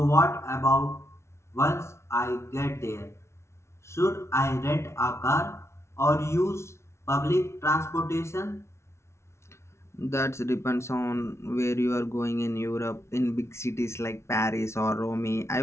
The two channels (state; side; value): late; right; 0.13 ms